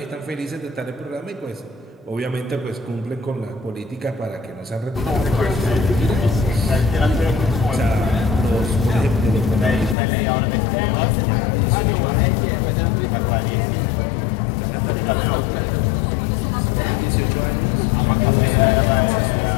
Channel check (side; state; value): right; drops out; at 10.0 s